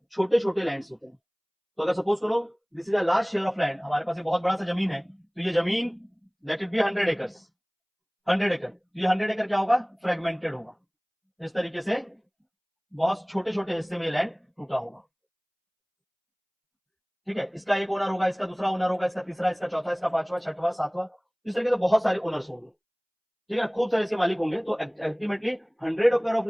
छोटे छोटे लैंड्स होते हैं। तो अगर सपोज करो this is a large share of land, हमारे पास एक बहुत बड़ा सा जमीन है, तो ये जमीन लेट इट बी 100 एकर्स, 100 एकड़, तो ये 100 एकड़ क्या होगा? फ्रेगमेंटेड होगा। इस तरीके से बहुत छोटे छोटे हिस्से में लैंड टूटा होगा। ठीक है, इसका एक ओनर होगा, इसका दूसरा ओनर होगा, इसका तीसरा, इसका चौथा, इसका पांचवा, छठवां, सातवां, इस तरीके से बहुत सारे ओनर्स होंगे। ठीक है, खूब सारे इसके मालिक होंगे। तो अल्टीमेटली 100 एकड़ ऑफ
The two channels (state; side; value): identical; both; correlation 1.00